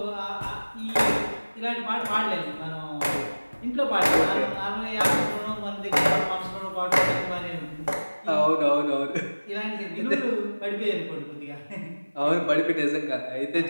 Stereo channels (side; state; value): both; inverted; correlation -1.00